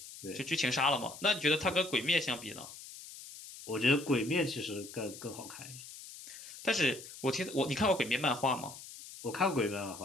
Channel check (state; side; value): noise; left; hiss, 14 dB below the sound